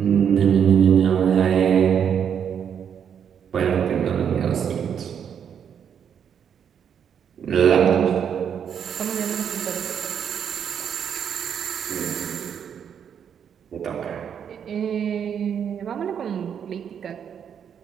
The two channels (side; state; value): left; quieter; 8.1 dB